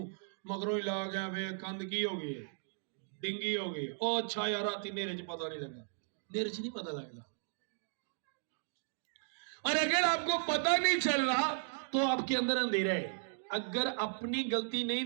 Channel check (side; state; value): left; silent; digital silence